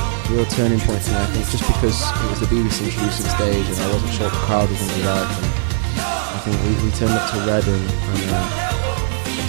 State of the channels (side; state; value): left; silent; digital silence